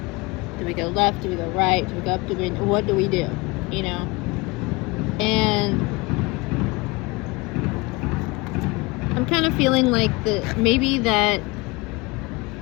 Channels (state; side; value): quieter; right; 24.7 dB